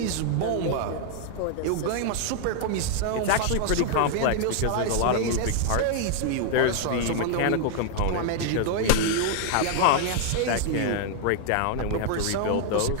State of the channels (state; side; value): different; both; correlation 0.00